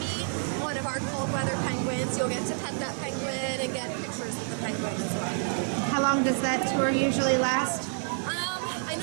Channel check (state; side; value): silent; left; 59 dB below the other